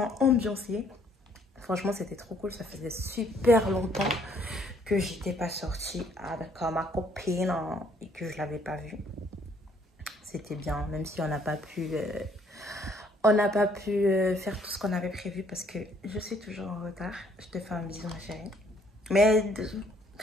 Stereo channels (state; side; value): normal; both; correlation 0.64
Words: ambiancée. Franchement, c'était trop cool. Ça faisait super longtemps que j'étais pas sortie avec ma copine hein, et que je l'avais pas vue. C'était bien, même si on n'a pas pu faire tout ce qu'on avait prévu parce que je suis toujours en retard. Je te fais un bisou, ma chérie. Mais